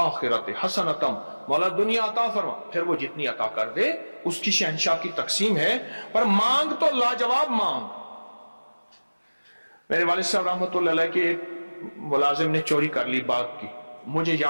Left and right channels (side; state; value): both; inverted; correlation -1.00